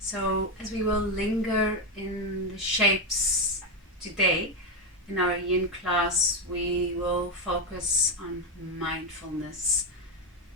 as we will linger in the shapes today, in our yin class, we will focus on mindfulness.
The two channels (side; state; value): both; normal; correlation 0.08